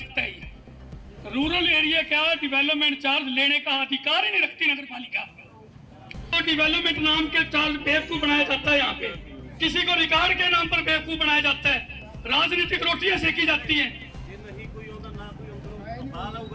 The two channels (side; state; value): both; identical; correlation 1.00